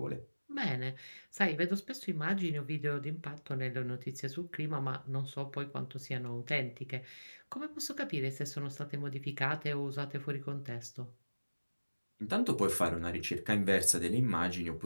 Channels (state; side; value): inverted; both; correlation -1.00